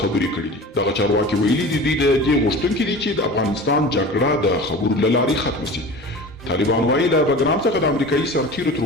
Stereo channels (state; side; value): normal; both; correlation 0.36